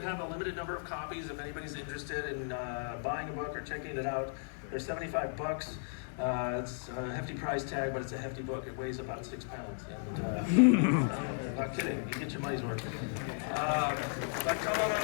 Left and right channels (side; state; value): right; silent; 54 dB below the other